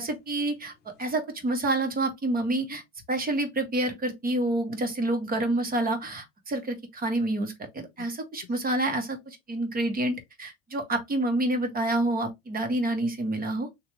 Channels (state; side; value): normal; both; correlation 0.45